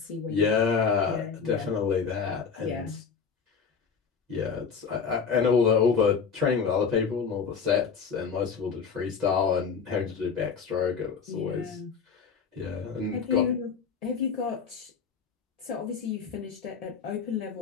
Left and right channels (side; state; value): right; quieter; 6.0 dB